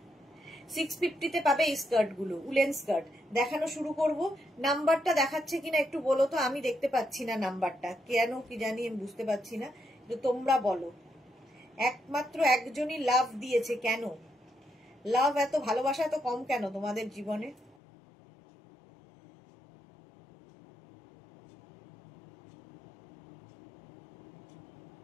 650-তে পাবে এই স্কার্ট গুলো, উলেন স্কার্ট দেখানো শুরু করব। নাম্বারটা দেখাচ্ছে কিনা একটু বলো তো, আমি দেখতে পাচ্ছি না নাম্বারটা, কেন কি জানি আমি বুঝতে পারছি না, তোমরা বলো। একমাত্র একজনই লাভ দিয়েছে, কেন লাভ এত, ভালোবাসা এত কম কেন তোমাদের জীবনে?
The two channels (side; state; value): right; drops out; at 17.8 s